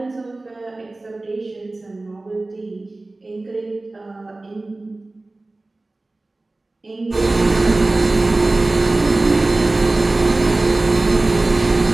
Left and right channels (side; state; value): left; quieter; 3.0 dB